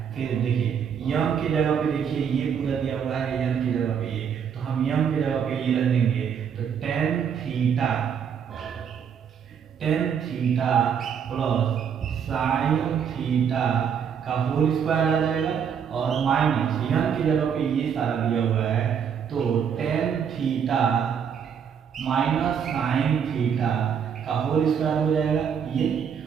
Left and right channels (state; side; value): quieter; left; 7.5 dB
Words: फिर देखिए यम की जगह पे देखिए ये पूरा दिया हुआ है, यम की जगह पे ये, तो हम यम की जगह पे ये रख देंगे, तो tan theta plus sine theta का होल स्क्वायर आ जाएगा, और माइनस यम की जगह पे ये सारा दिया हुआ है, तो tan theta minus sine theta का होल स्क्वायर हो जाएगा। ये